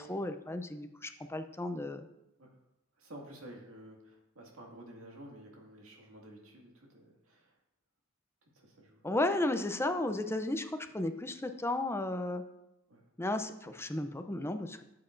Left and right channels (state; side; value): normal; both; correlation 0.67